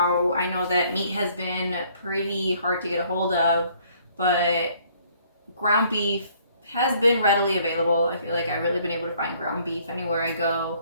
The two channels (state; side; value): inverted; both; correlation -0.62